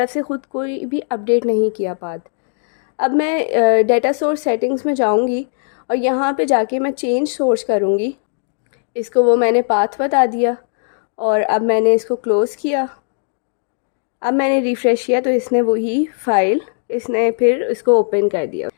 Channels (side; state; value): right; silent; digital silence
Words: से ख़ुद कोई भी अपडेट नहीं किया पाथ। अब मैं डेटा सोर्स सेटिंग्स में जाऊंगी और यहाँ पे जाके मैं चेंज सोर्स करूँगी। इसको वो मैंने पाथ बता दिया और अब मैंने इसको क्लोज़ किया। अब मैंने रिफ़्रेश किया तो इसने वही फ़ाइल इसने फिर इसको ओपन कर दिया।